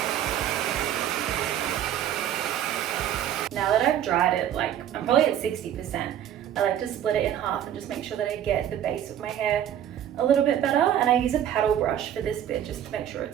Now that I've dried it, I'm probably at 60%, I like to split it in half and just make sure that I get the base of my hair a little bit better, and I use a paddle brush for this bit just to make sure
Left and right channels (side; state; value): left; quieter; 10.6 dB